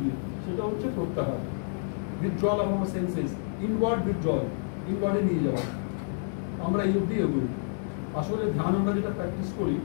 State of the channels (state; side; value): silent; right; digital silence